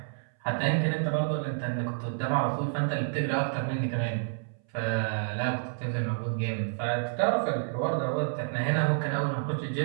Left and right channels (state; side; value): silent; left; 58 dB below the other